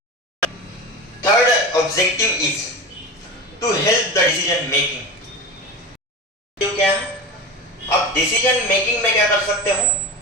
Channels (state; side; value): normal; both; correlation 0.27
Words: Third objective is to help the decision making. क्या है, आप डिसीजन मेकिंग में क्या कर सकते हो,